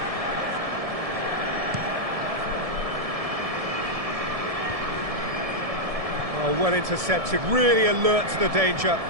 Oh, well intercepted, really alert to the danger.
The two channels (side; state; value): left; late; 1.7 ms